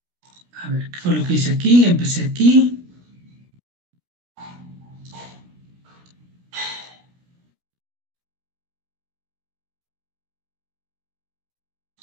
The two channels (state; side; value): late; left; 16 ms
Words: A ver, ¿qué fue lo que hice aquí? Empecé aquí.